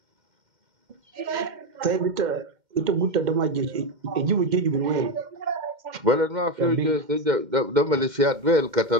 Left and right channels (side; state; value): left; late; 2.1 ms